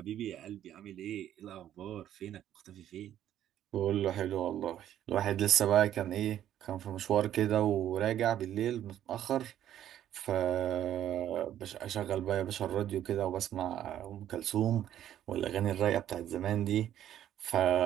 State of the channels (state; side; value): quieter; left; 11.3 dB